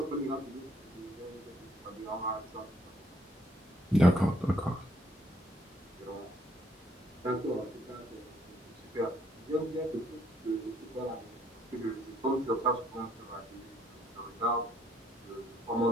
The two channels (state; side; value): normal; both; correlation 0.67